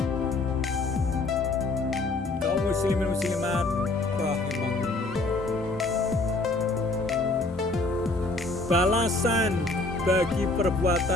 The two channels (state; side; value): quieter; right; 3.1 dB